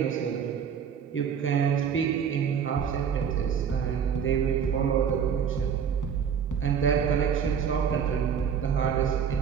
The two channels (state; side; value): quieter; left; 7.5 dB